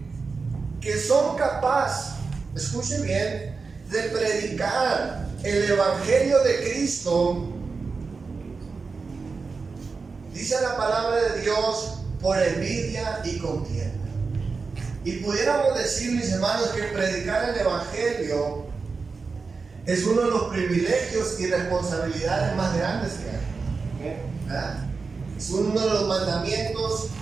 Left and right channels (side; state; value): left; quieter; 4.6 dB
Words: son capaces, escuchen bien, de predicar el evangelio de Cristo, dice la palabra de Dios, por envidia y contienda. Y pudiéramos decir, mis hermanos, que predicar el evangelio es uno de los privilegios y responsabilidades más grandes que hay. ¿Verdad? Es uno de los mandamientos